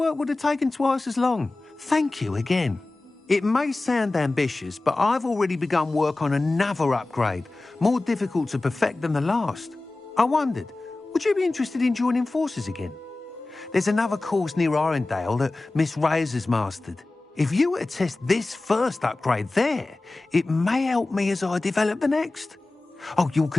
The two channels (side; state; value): right; quieter; 3.1 dB